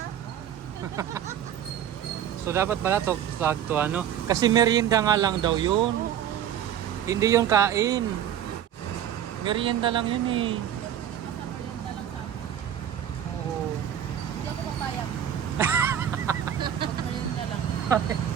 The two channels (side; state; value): left; quieter; 10.0 dB